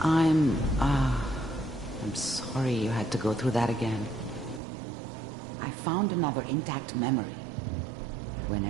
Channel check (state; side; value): drops out; left; at 4.6 s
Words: sorry you had to go through that again. I found another intact memory.